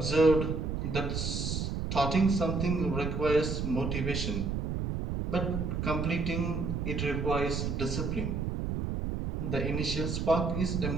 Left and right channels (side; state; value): right; noise; rumble, 2 dB below the sound